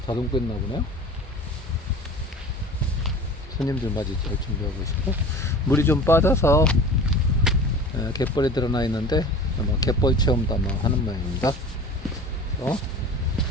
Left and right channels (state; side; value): normal; both; correlation 0.39